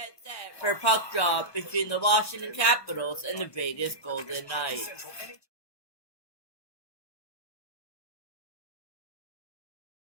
set for puck drop between the Washington Capitals and the Vegas Golden Knights.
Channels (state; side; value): late; right; 1.3 ms